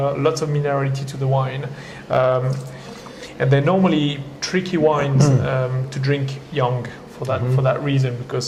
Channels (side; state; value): both; identical; correlation 1.00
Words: lots of minerality to the wine, and they're normally tricky wines to drink young for that reason,